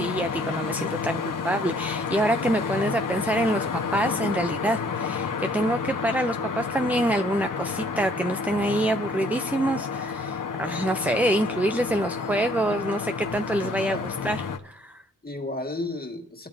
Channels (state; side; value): normal; both; correlation 0.62